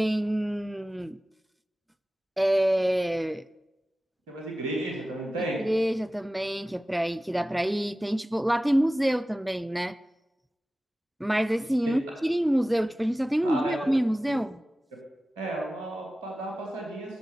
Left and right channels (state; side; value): normal; both; correlation 0.96